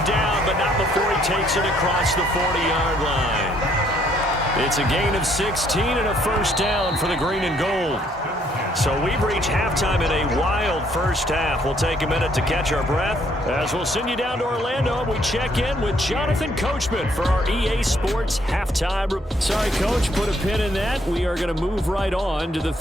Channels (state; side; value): normal; both; correlation 0.67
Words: down, but not before he takes it across the 40-yard line. It's a gain of 16 and a first down for the green and gold. So we've reached halftime in a wild first half. We'll take a minute to catch our breath as we'll send you down to Orlando. We check in with Jonathan Coachman for our EA Sports halftime. Sorry, Coach, put a pin in that. We are going to move right on to the